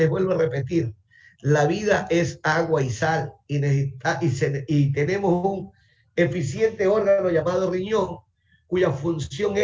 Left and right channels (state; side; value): identical; both; correlation 1.00